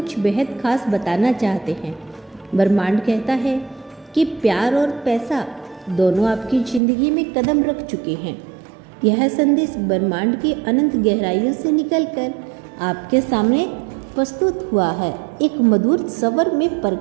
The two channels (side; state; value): left; drops out; at 6.8 s